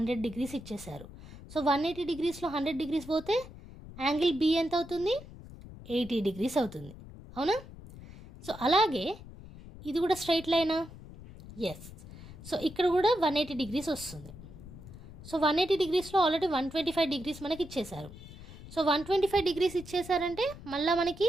degrees ఇచ్చేశారు. సో 180 degreesలో 100 degrees పోతే యాంగిల్ బి ఎంత అవుతుంది, 80 degrees అవుతుంది, అవునా. సో అలాగే ఇది కూడా స్ట్రైట్ లైనా, ఎస్. సో ఇక్కడ కూడా 180 degrees వస్తుంది. సో 180 degreesలో ఆల్రెడీ 125 degrees మనకి ఇచ్చేశారు. సో 125 degrees ఇచ్చేసారంటే మళ్ళీ మనకి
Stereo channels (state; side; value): noise; left; rumble, 16 dB below the sound